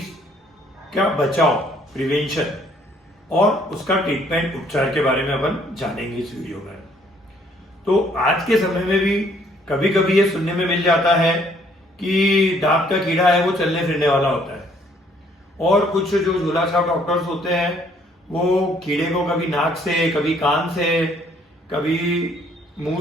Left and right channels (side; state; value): both; normal; correlation 0.64